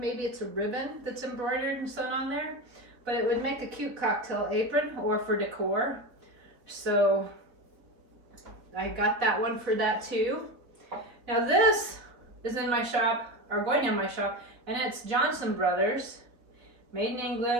it's a ribbon that's embroidered and sewn on there, but it would make a cute cocktail apron or for decor. So I got that one for that too. Now this is in my shop, or going in my shop, and it's Johnson Brothers, made in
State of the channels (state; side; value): late; left; 3.9 ms